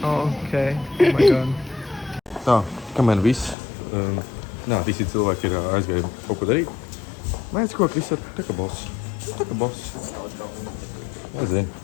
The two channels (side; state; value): right; drops out; at 3.6 s